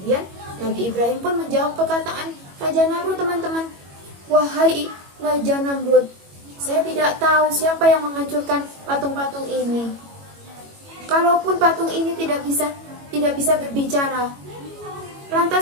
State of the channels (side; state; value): left; late; 21 ms